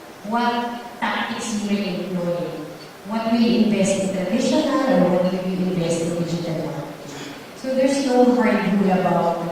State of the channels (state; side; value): identical; both; correlation 1.00